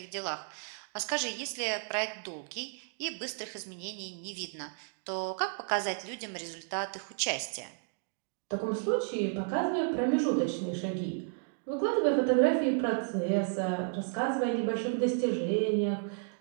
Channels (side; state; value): left; silent; digital silence